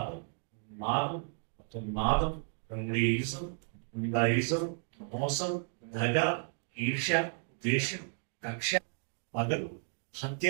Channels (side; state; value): left; silent; 56 dB below the other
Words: మాదం, నాదం, రంగీజం, నిందాయిజం, మోసం, దగ, ఈర్ష్య, ద్వేషం, కక్ష, పగలు,